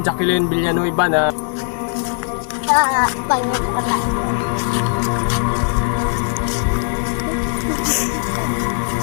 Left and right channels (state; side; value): silent; right; 60 dB below the other